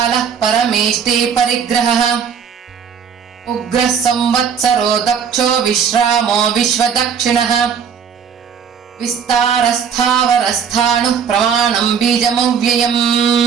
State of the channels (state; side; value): quieter; left; 7.0 dB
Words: परमेष्टि परिग्रहः उग्रः संवत्सरो दक्षो विश्रामो विश्वदक्षिणः विस्तारस्थावरस्थाणुः प्रमाणं बीजमव्ययम्